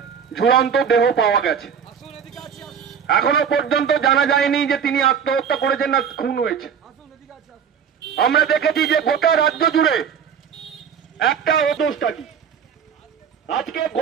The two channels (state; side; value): quieter; left; 7.5 dB